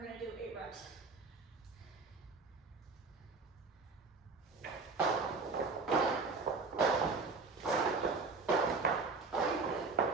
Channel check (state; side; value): quieter; left; 4.2 dB